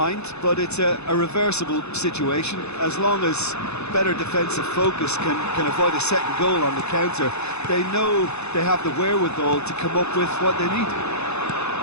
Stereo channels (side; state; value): right; late; 0.81 ms